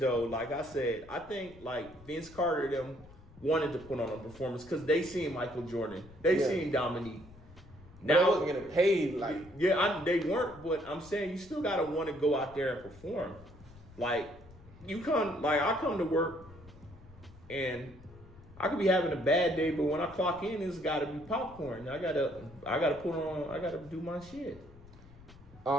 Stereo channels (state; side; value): noise; left; rumble, 21 dB below the sound